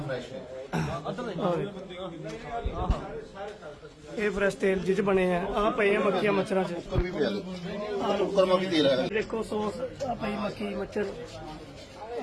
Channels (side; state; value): both; identical; correlation 1.00